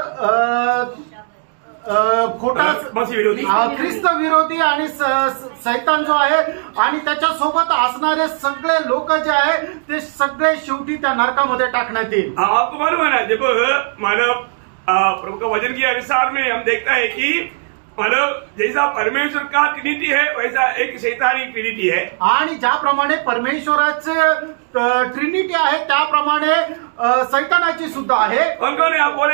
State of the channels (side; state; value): left; silent; 64 dB below the other